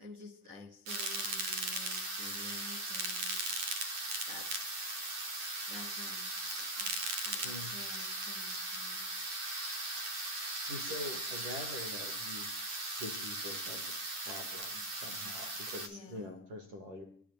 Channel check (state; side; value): late; left; 10 ms